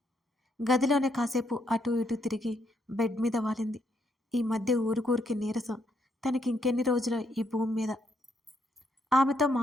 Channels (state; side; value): normal; both; correlation 0.75